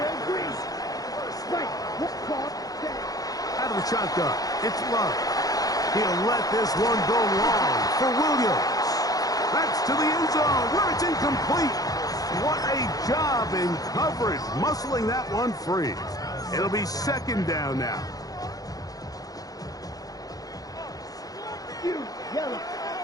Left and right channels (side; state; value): right; late; 0.18 ms